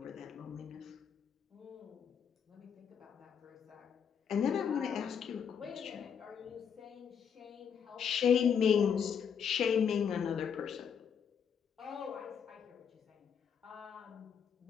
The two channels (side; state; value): right; quieter; 7.4 dB